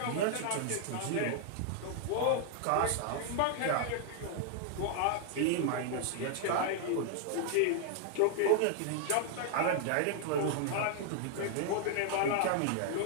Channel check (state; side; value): different; both; correlation 0.00